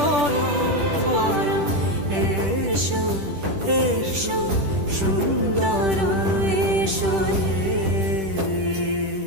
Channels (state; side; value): late; left; 10 ms